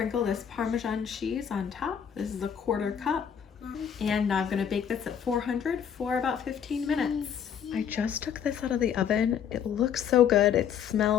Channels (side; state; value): right; quieter; 8.2 dB